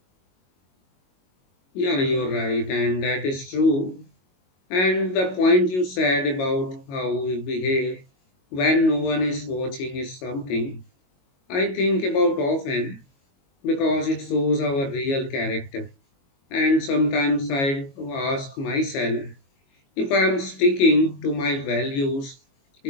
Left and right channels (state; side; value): late; right; 22 ms